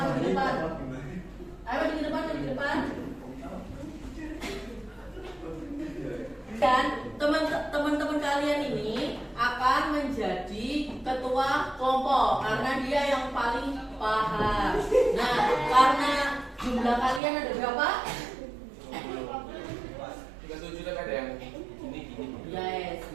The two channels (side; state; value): left; drops out; at 17.2 s